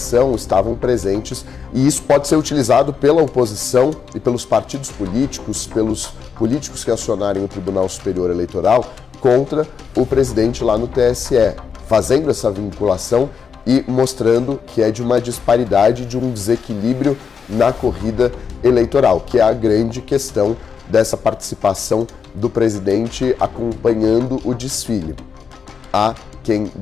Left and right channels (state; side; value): quieter; right; 6.3 dB